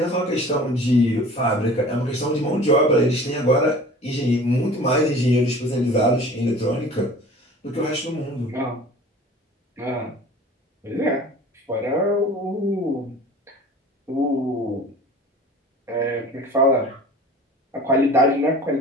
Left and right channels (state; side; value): normal; both; correlation 0.43